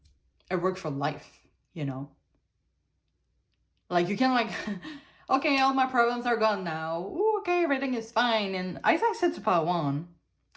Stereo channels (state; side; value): identical; both; correlation 1.00